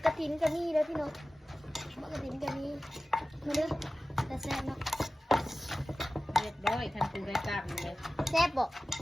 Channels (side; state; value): both; normal; correlation 0.95